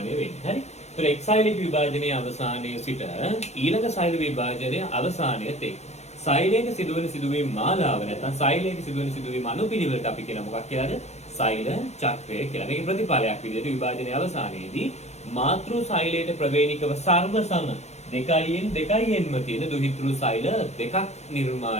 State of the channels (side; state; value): right; late; 0.32 ms